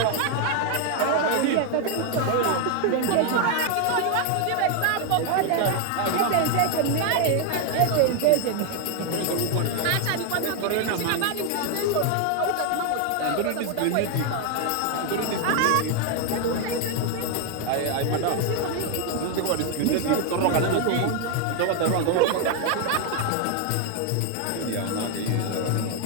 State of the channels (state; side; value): different; both; correlation 0.00